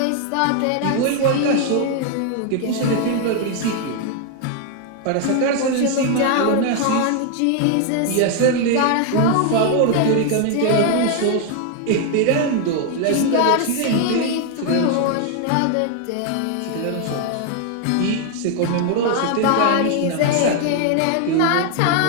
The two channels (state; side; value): different; both; correlation 0.00